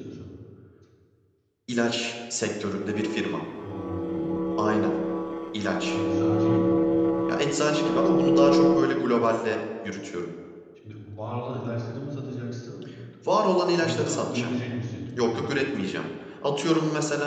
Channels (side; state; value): both; identical; correlation 1.00